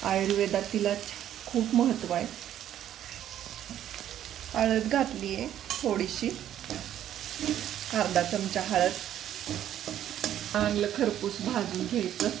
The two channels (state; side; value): quieter; left; 11.2 dB